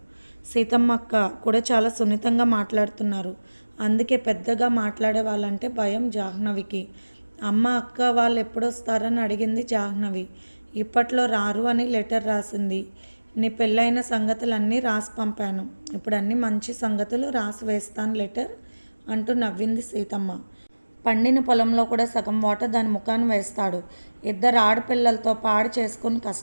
సీతమ్మ అక్క కూడా చాలా సున్నితంగా మాట్లాడుతున్నారు. అందుకే పెద్దగా మాట్లాడే వాళ్ళంటే భయం జాహ్నవికి. అమ్మ అక్క వాళ్ళు ఎప్పుడొస్తారని అడిగింది జాహ్నవి. ఇప్పట్లో రారు అని లెటర్ రాసింది. నీ పెళ్ళైన సంగతులన్నీ రాసి పంపాను. ఇప్పుడు అన్ని మంచి సంగతులు రాసి వేస్తాను లెటర్ అంటూ నవ్వింది సీతమ్మ. పండిన పొలంలో కూడా సగం వాటర్ దాని ముఖాన్ని వేస్తాడు. ఇద్దరు ఆడపిల్లలతో పాడు చేసుకుని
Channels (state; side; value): inverted; both; correlation -1.00